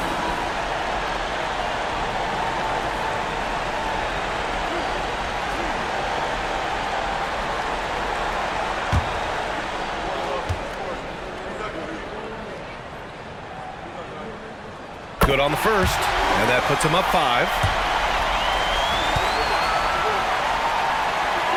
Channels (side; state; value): both; identical; correlation 1.00